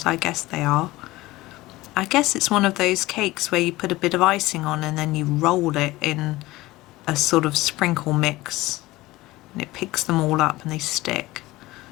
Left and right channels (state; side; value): quieter; right; 18.8 dB